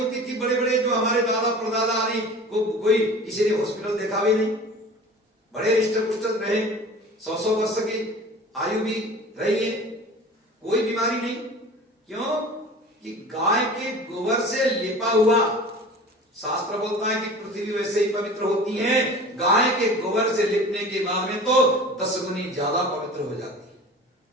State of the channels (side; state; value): both; normal; correlation 0.40